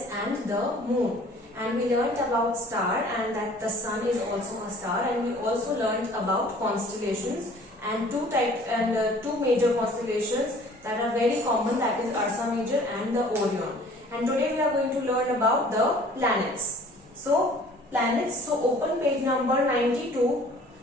and the moon. And we learnt about star and that the sun is also a star, and we also learnt about constellations and two major constellations that are very common, that is Ursa Major and the Orion. And today we are going to learn about the planets. So planets, so open page number 92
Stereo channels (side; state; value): both; normal; correlation 0.51